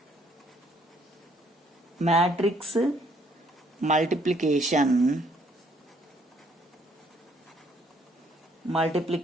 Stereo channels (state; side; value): normal; both; correlation 0.66